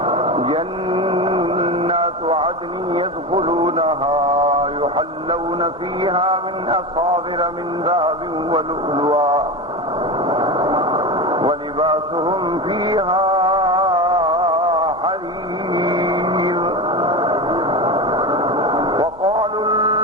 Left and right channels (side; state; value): both; normal; correlation 0.22